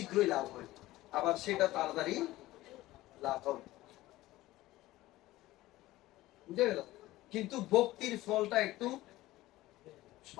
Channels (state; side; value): quieter; right; 17.0 dB